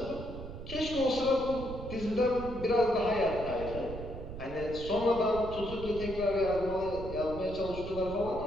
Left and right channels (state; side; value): noise; right; rumble, 10 dB below the sound